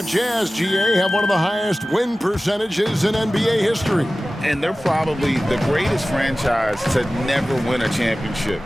Jazz, GA, have one of the highest win percentages in NBA history. And they're probably the greatest franchise to never win a championship.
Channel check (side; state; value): both; normal; correlation 0.96